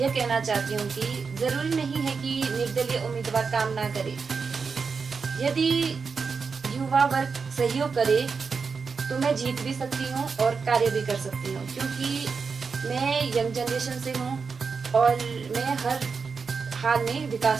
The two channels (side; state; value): left; quieter; 5.2 dB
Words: कहना चाहती हूँ कि जरूरी नहीं है कि निर्दलीय उम्मीदवार काम ना करे। यदि युवा वर्ग सहयोग करे तो मैं जीत भी सकती हूँ और कार्य भी कर सकती हूँ, क्योंकि मैं यंग जनरेशन से हूँ और मैं हर हाल में